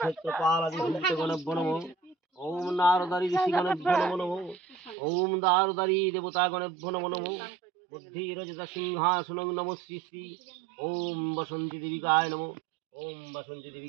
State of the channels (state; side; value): drops out; left; at 5.0 s